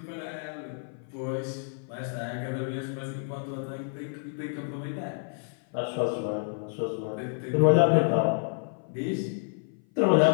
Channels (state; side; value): silent; right; 56 dB below the other